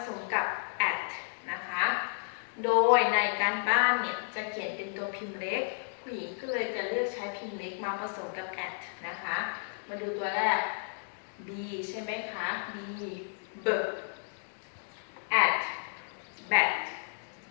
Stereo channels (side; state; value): right; silent; digital silence